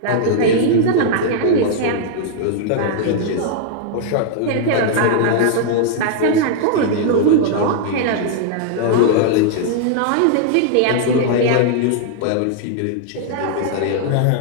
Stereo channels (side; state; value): both; different; correlation -0.01